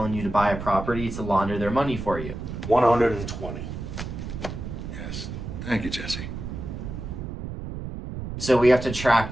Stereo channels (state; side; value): noise; right; rumble, 7 dB below the sound